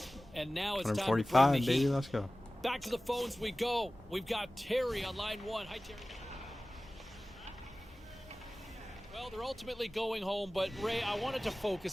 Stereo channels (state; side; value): normal; both; correlation 0.97